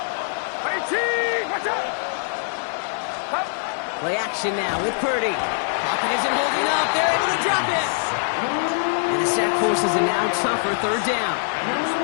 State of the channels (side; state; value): right; silent; digital silence